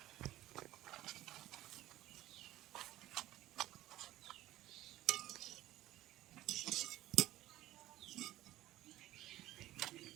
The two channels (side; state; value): left; quieter; 15.4 dB